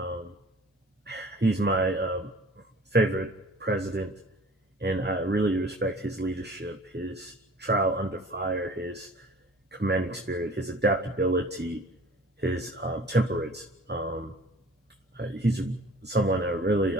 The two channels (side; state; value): both; normal; correlation 0.47